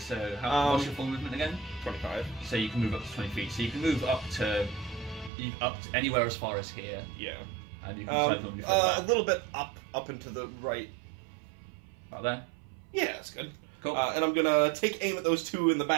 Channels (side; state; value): left; drops out; at 5.3 s